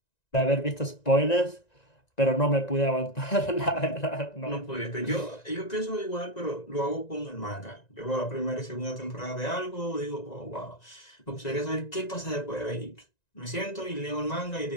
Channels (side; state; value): right; late; 1.9 ms